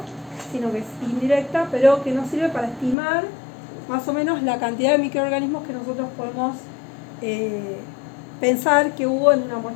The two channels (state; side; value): drops out; right; at 3.0 s